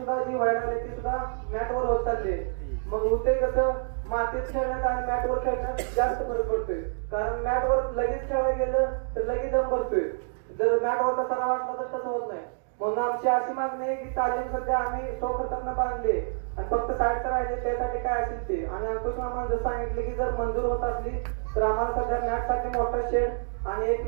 जी व्हायला लागली ती सुद्धा मॅटवर होत चालली. मग होते कसं, मातीत खेळण्यात आणि मॅटवर खेळण्यात जास्त फरक पडतोय. कारण मॅटवर लगेच खेळायला गेलं तर लगेच दम भरतोय, जर मॅटवर तसा वाटला तर तसं होत नाही. म्हणून आमची अशी मागणी आहे की तालीम सध्या आम्ही स्वखर्चाने बांधली आणि फक्त साईडचं राहिले त्यासाठी काय असेल ते. आणि अंकुश मामानं जर सांगितले की जर मंजूर होत असली तर आम्हाला सध्या मॅटसाठी मोठा शेड आणि एक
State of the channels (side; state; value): left; silent; digital silence